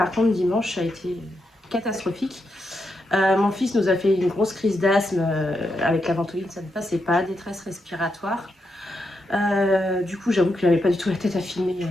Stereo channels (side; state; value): both; normal; correlation 0.83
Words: contre dimanche ça a été catastrophique. Mon fils nous a fait une grosse crise d'asthme avec la ventoline, ça ne passait pas, détresse respiratoire. Du coup, j'avoue que je n'avais pas du tout la tête à filmer